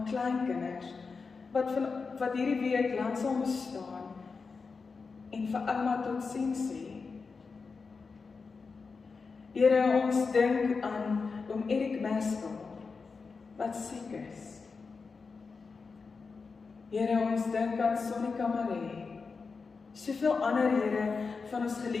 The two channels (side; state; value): right; quieter; 4.7 dB